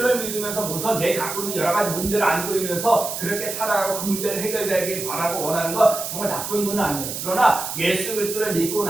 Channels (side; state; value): right; noise; hiss, 6 dB below the sound